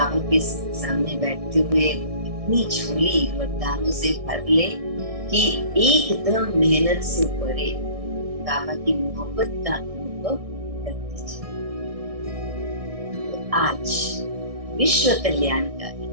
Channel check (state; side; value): late; left; 1.6 ms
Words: के सामने बैठते हुए इतनी झोली वरदानों से भर ले कि एकदम मेहनत से परे बाबा की मोहब्बत का अनुभव कर दीजिए। तो आज विश्व कल्याणकारी,